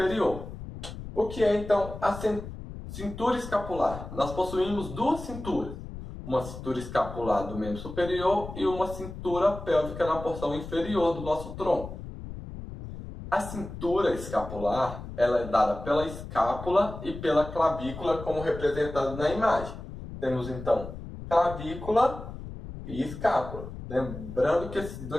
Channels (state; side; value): noise; left; rumble, 11 dB below the sound